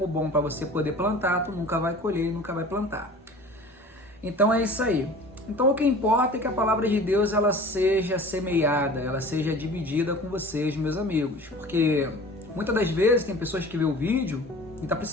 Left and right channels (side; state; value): both; normal; correlation 0.42